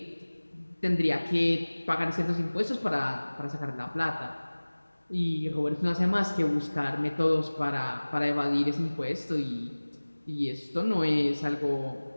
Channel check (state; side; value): inverted; both; correlation -1.00